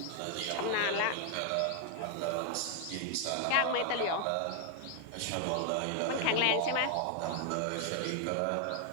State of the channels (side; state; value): both; different; correlation 0.00